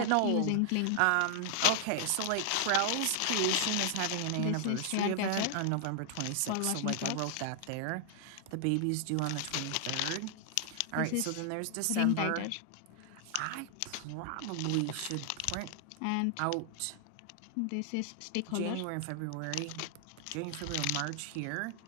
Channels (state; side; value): different; both; correlation 0.00